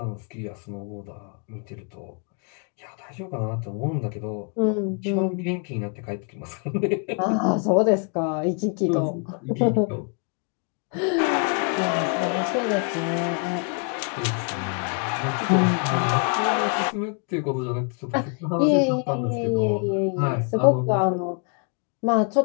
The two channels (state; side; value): quieter; right; 39.5 dB